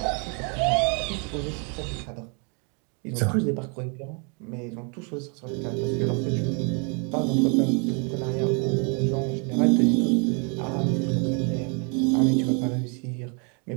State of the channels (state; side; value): quieter; left; 36.5 dB